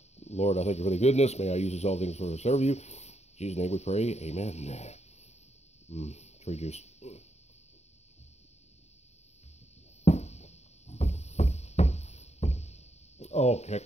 Lord, I thank you for the goodness. May I use this all things for to serve you. In Jesus' name we pray. Amen. Tree juice. Oh, kick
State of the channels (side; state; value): right; late; 0.32 ms